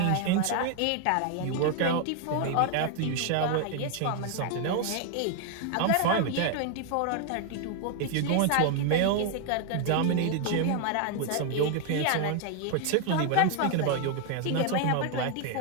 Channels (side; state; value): both; different; correlation 0.00